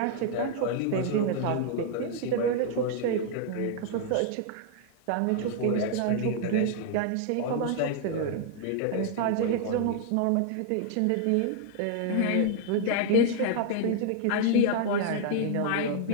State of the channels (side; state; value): both; different; correlation 0.00